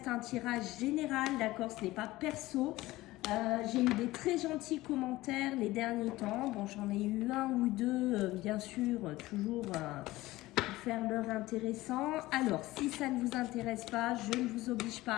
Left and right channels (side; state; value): right; quieter; 18.1 dB